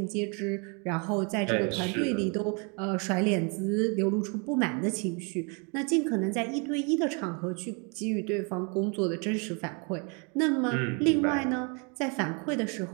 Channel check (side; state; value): left; quieter; 34.5 dB